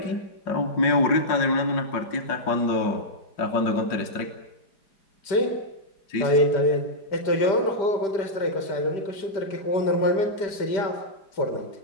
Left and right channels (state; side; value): late; right; 5.1 ms